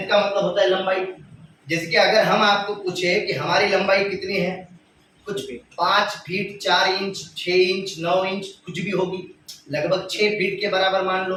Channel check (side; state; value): both; identical; correlation 1.00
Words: का मतलब होता है लंबाई। जैसे कि अगर हम आपको पूछे कि हमारी लंबाई कितनी है, कुछ भी 5 फीट 4 इंच 6 इंच 9 इंच कुछ भी होगी, लगभग 6 फीट के बराबर मान लो,